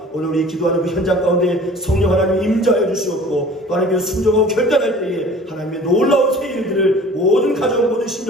오늘 우리 기도하는 그 현장 가운데 성령 하나님 임재하여 주시옵고 또 하나님의 순종하고 결단할 때에 하나님의 놀라운 새 일들을 모든 가정 모든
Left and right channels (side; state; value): both; normal; correlation 0.46